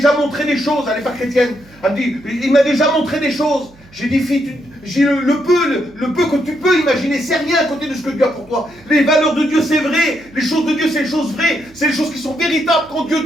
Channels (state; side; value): noise; right; hum, 26 dB below the sound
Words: montré des choses. Elle n'est pas chrétienne. Elle me dit, il m'a déjà montré des choses. J'ai dit, fille, le peu que tu peux imaginer, c'est rien à côté de ce que Dieu a pour toi. Les valeurs de Dieu, c'est vrai. Les choses de Dieu, c'est les choses vraies. C'est les choses qui sont véritables. Quand Dieu